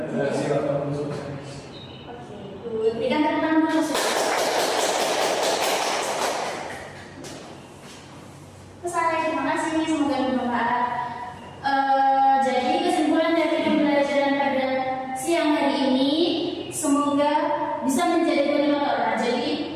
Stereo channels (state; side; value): identical; both; correlation 1.00